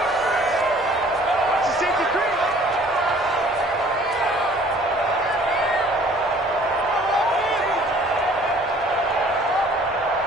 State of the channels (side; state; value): both; normal; correlation 0.54